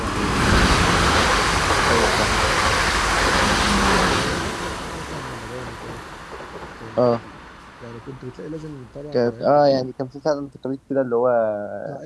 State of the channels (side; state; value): both; identical; correlation 1.00